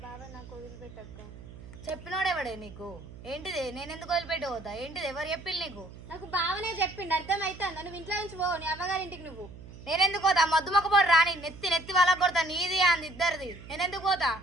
బావ నాకు వదిలిపెట్టక్క. చెప్పినోడెవడే నీకు? ఏంటిది? నేను ఎందుకు వదిలిపెట్టి పోతా? ఏంటిది? ఎవరు చెప్పింది నీకు? నాకు బావనే చెప్పిండు. అర్థమవుతుందా? నువ్వు ఇంట్లో నుంచి పోవు, నీ అమ్మగారింటికి. నువ్వు నేనెందుకు పోతా? మద్దు మొక్క పోడు రాని నెత్తి వాళ్ళకి కొడతా. నీది అంది ఇద్దరిది. నేనెందుకు పోతా?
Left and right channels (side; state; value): right; noise; hum, 16 dB below the sound